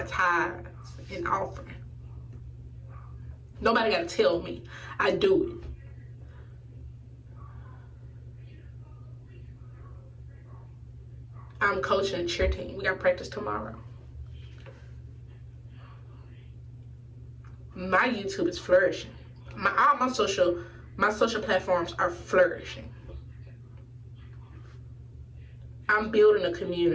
tithes and offering. Nobody got to tell me. I do it. I'm coaching a cheer team. We got practice tomorrow. My YouTube is flourishing. All my social platforms are flourishing. I'm building a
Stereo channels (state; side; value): identical; both; correlation 1.00